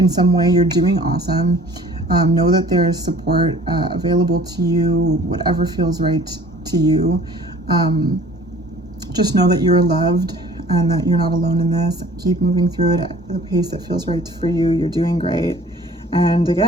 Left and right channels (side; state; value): both; normal; correlation 0.50